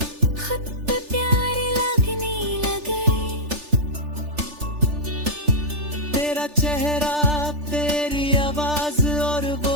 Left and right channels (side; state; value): left; late; 3.4 ms